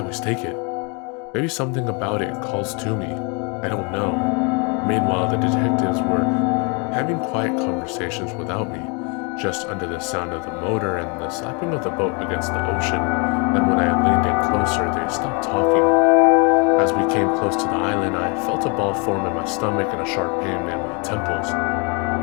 take it. Maybe something about it calls to me. I don't know. Meanwhile, the detectives were having quiet conversations without me, just under the sound of the motor and the slapping of the boat against the ocean, and when I leaned in closer, they stopped talking. As we came close to the island, I felt a ball form in my stomach and a sharp pain in my temples.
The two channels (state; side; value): quieter; right; 33.3 dB